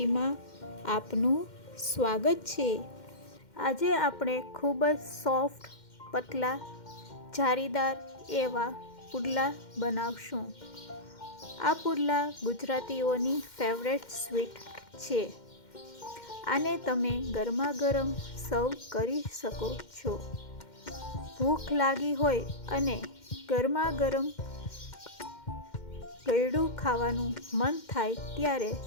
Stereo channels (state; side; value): late; right; 2.1 ms